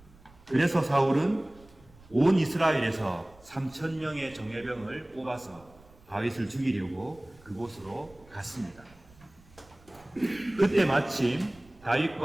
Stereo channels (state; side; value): noise; right; rumble, 26 dB below the sound